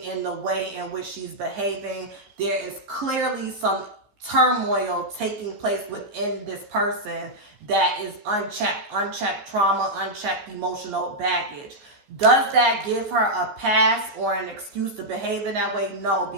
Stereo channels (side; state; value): left; late; 15 ms